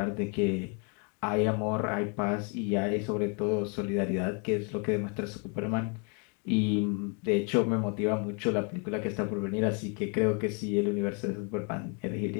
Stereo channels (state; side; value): quieter; right; 36.9 dB